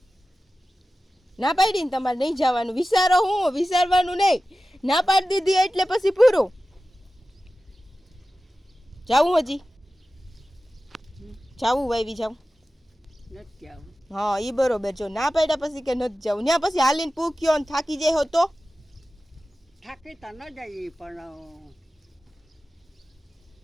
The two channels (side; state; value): both; normal; correlation 0.95